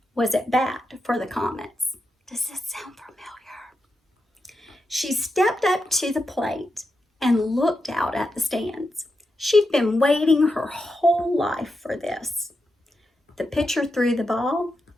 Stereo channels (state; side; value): normal; both; correlation 0.87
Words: was at bat for the Comets. Does this sound familiar? She stepped up to the plate and looked out at the stands. She'd been waiting her whole life for this. The pitcher threw the ball,